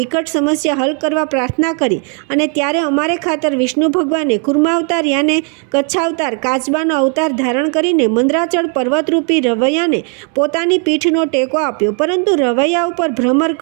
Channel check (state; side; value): quieter; left; 40.0 dB